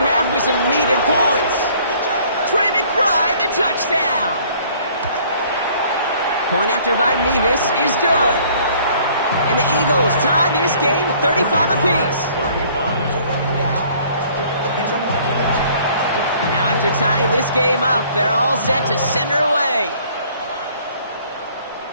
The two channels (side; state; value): both; inverted; correlation -0.57